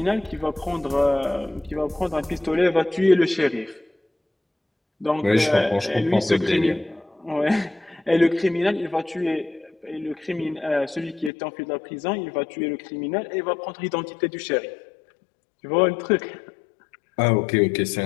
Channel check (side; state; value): right; drops out; at 11.3 s